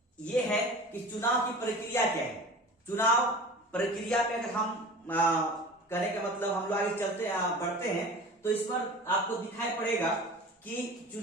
ये है कि चुनाव की प्रक्रिया क्या है। चुनाव प्रक्रिया पे अगर हम करने का मतलब हम लोग आगे बढ़ते हैं तो इस पर आपको दिखाई पड़ेगा कि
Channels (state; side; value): normal; both; correlation 0.38